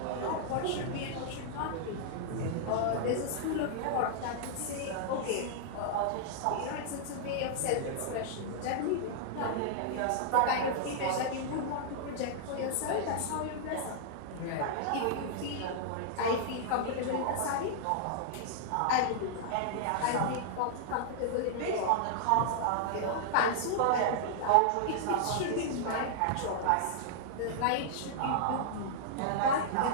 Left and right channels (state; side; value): different; both; correlation -0.01